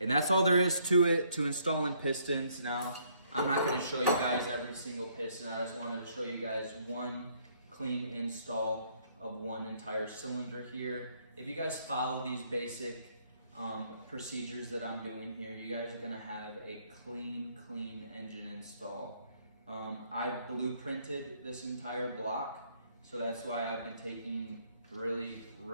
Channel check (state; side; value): inverted; both; correlation -0.67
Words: And that's all there is to it, to installing pistons. Now, I'm not going to show you guys every single piston. I just wanted to show you guys one clean install of one entire cylinder here. If you guys follow these basic procedures that I'm doing here, you guys are going to have a clean engine install. I blueprinted this entire block, so that's why I've been taking really